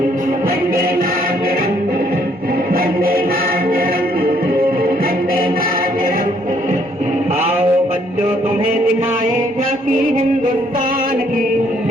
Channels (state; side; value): normal; both; correlation 0.67